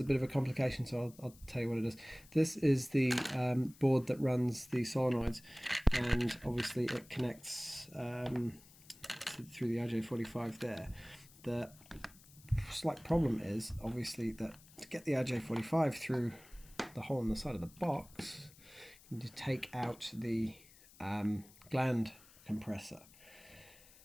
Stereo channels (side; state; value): left; noise; hiss, 23 dB below the sound